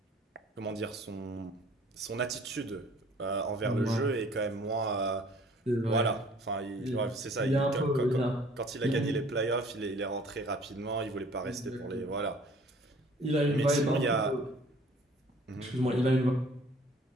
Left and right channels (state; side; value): normal; both; correlation 0.53